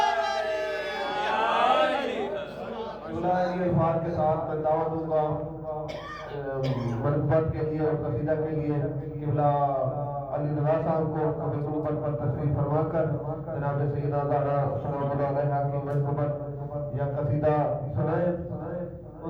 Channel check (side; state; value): both; identical; correlation 1.00